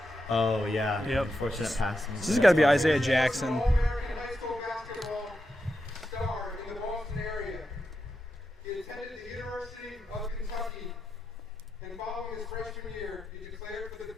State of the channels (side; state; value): both; normal; correlation 0.87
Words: Oh yeah. Yep. Unfortunate pass. This has got to be Isaiah Jackson. All-American high school basketball star in the Boston area. He attended the University of Kentucky, and following his freshman year, he declared for the